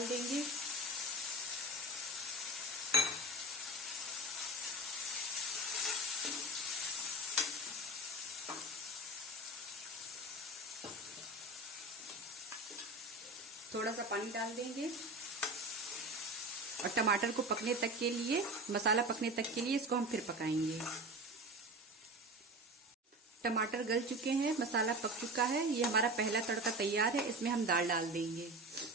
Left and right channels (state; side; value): normal; both; correlation 0.30